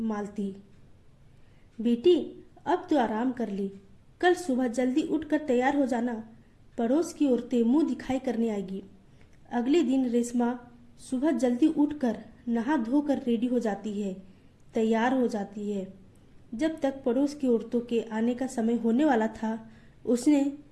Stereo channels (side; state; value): both; identical; correlation 1.00